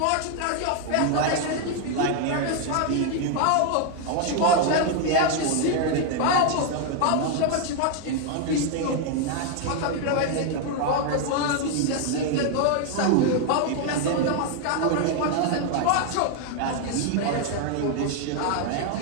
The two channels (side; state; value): both; different; correlation 0.00